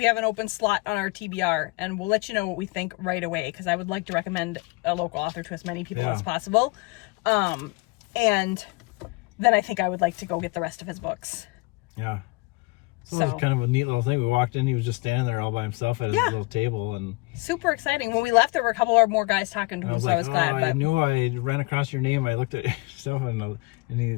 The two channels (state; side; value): quieter; right; 25.9 dB